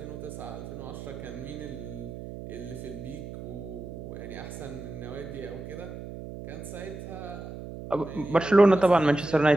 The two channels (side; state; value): right; noise; hum, 10 dB below the sound